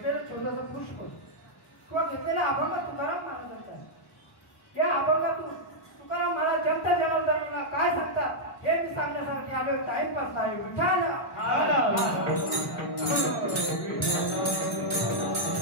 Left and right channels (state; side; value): normal; both; correlation -0.05